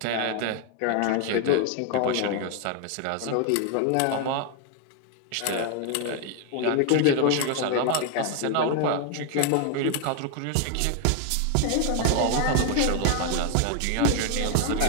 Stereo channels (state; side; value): different; both; correlation 0.00